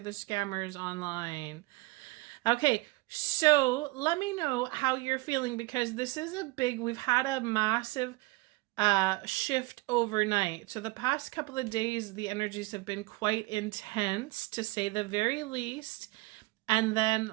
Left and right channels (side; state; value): left; quieter; 22.8 dB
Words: the scammers online. Okay, so let me know how you're feeling because this is we've had a massive shift overnight. So the past couple of days, the energies have been quite intense, to say the very least. And then